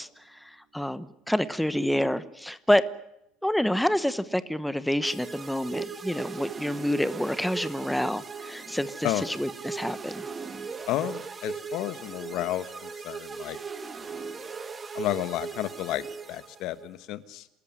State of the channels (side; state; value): both; normal; correlation 0.85